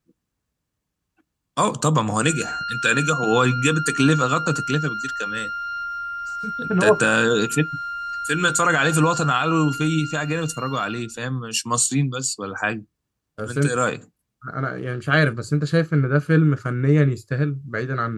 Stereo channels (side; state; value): both; identical; correlation 1.00